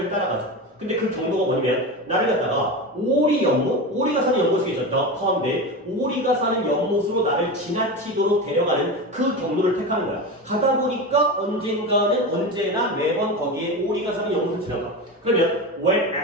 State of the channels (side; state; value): both; normal; correlation 0.23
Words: 따라가죠. 근데 그 경로가 뭐냐면 나를 갖다가 오리가 사는 연못이 있었다. 가운데 오리가 사는 연못으로 나를 지나치도록 데려가는 그 경로를 택하는 거야. 가다 보니까 언제나 매번 거기에 오리가 사는 연못을 지나가. 그러면 when